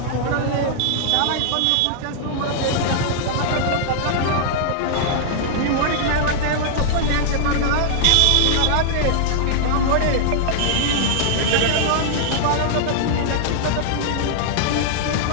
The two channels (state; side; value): different; both; correlation -0.01